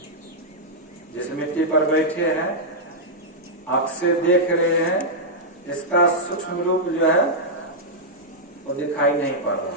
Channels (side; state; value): both; normal; correlation -0.07